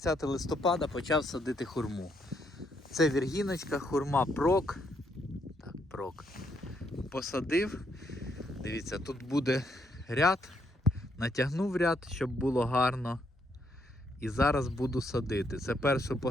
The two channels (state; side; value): normal; both; correlation 0.75